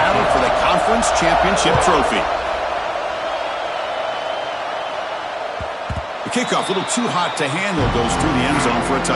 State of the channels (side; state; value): both; identical; correlation 1.00